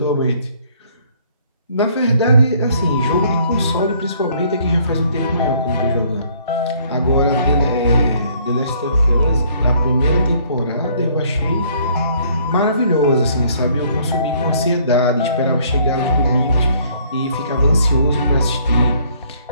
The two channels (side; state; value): both; inverted; correlation -0.62